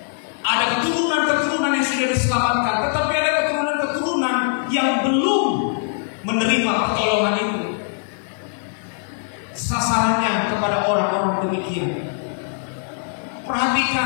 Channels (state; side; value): silent; right; 65 dB below the other